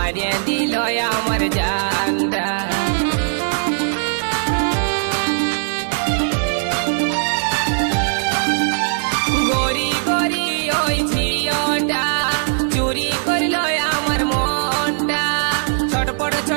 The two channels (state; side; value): silent; left; digital silence